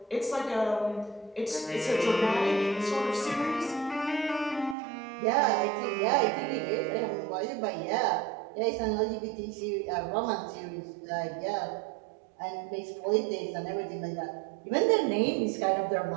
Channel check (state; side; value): drops out; left; at 4.8 s